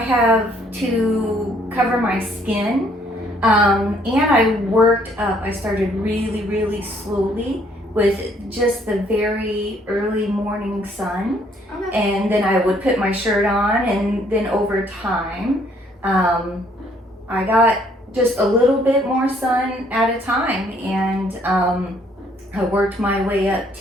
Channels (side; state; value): both; normal; correlation 0.65